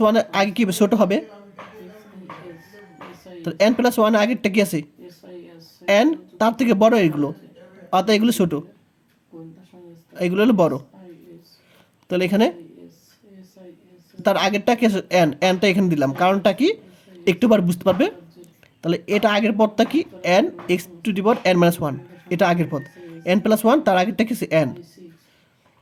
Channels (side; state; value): both; identical; correlation 1.00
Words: 1 এর আগে কি ছোট হবে, তো n প্লাস 1 এর আগেরটা কি আছে n, তার থেকে বড় এগুলো, অর্থাৎ এগুলো ছোট, এগুলো হলো বড়। তাহলে এখানে তার আগেরটা কি n, nটা এখানে দিলাম, কারণটা কি একটু বার বুঝতে পারবে। তাহলে এটা আগের পদটা কি n x two the power n minus 1, এটা আগের পদ, n প্লাস 1 তার আগেরটা কি n,